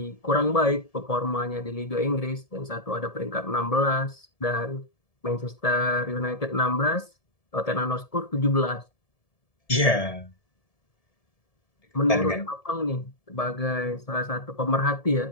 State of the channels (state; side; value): late; right; 1.7 ms